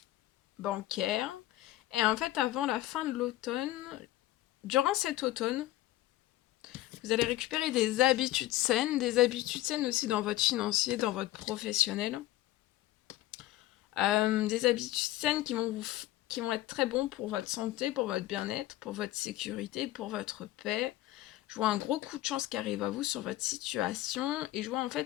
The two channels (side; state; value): right; quieter; 15.8 dB